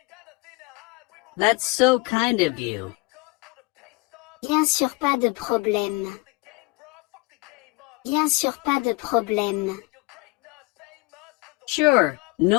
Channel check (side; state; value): right; quieter; 25.6 dB